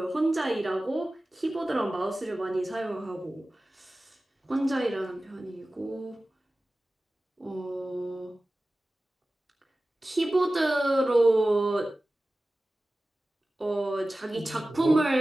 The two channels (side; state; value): both; normal; correlation 0.96